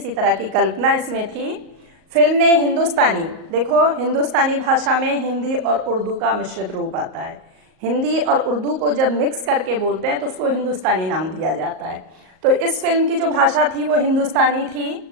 तरह की कल्पना इसमें थी। फिल्म ने हिंदुस्तानी, देखो हिंदुस्तानी भाषा में हिंदी और उर्दू का मिश्रित रूप आता है। हिंदी और उर्दू को जब मिक्स करके बोलते हैं तो उसको हिंदुस्तानी नाम दिया जाता है। तो इस फिल्म की जो भाषा थी वो हिंदुस्तानी थी,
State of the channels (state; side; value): late; left; 38 ms